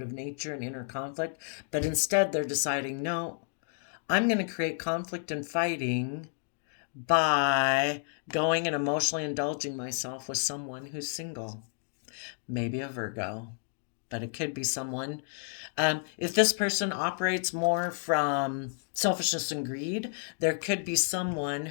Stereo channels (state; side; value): silent; right; digital silence